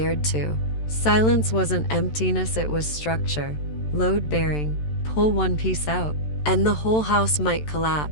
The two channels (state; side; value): late; right; 13 ms